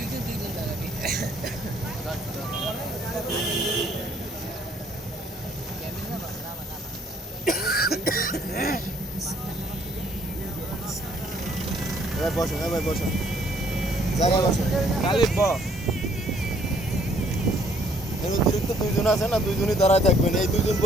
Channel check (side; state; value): both; normal; correlation 0.63